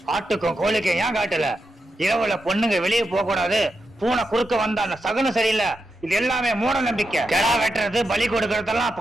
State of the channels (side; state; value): both; normal; correlation 0.86